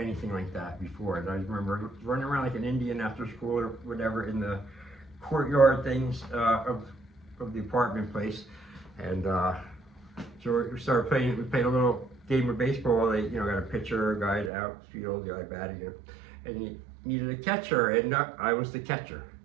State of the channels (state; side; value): drops out; left; at 14.5 s